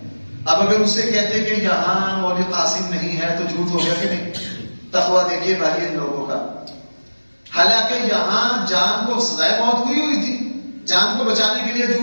اب اگر اسے کہتے کہ یہاں مولوی قاسم نہیں ہے تو جھوٹ ہو گیا کہ نہیں؟ تقویٰ دیکھیے بھائی ان لوگوں کا. حالانکہ یہاں جان کو سزائے موت ہوئی تھی، جان کو بچانے کے لیے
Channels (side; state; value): both; inverted; correlation -1.00